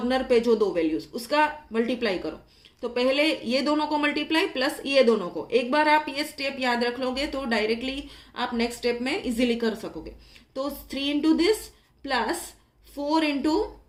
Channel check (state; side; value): identical; both; correlation 1.00